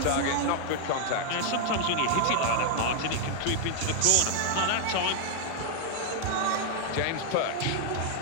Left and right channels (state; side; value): different; both; correlation 0.00